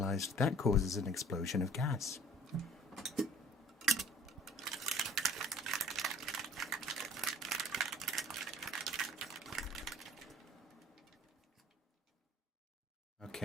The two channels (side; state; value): both; normal; correlation 0.51